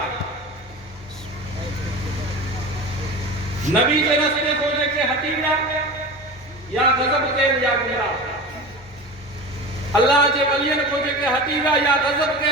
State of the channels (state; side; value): normal; both; correlation 0.31